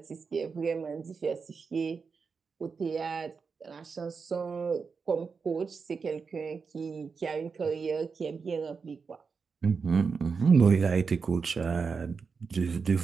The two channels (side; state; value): left; quieter; 5.3 dB